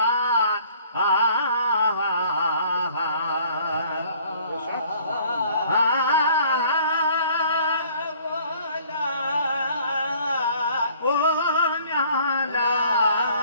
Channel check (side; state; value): both; inverted; correlation -0.56